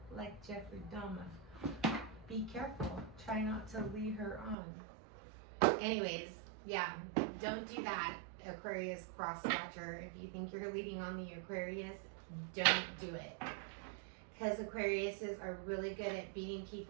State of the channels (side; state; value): left; drops out; at 4.5 s